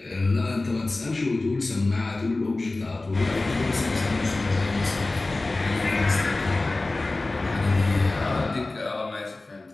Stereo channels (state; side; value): quieter; right; 3.1 dB